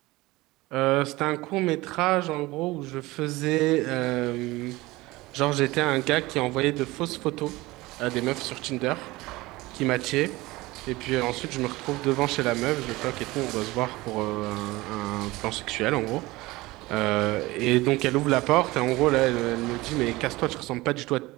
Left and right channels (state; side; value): quieter; left; 20.3 dB